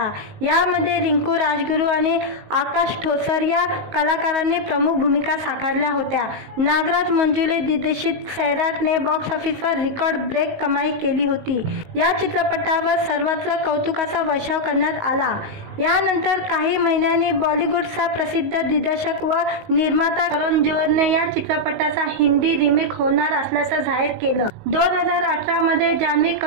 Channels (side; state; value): left; late; 19 ms